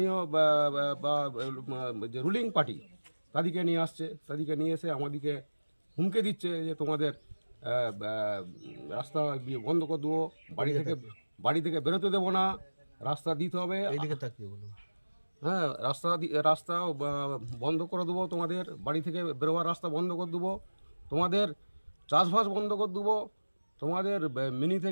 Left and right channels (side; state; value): both; inverted; correlation -1.00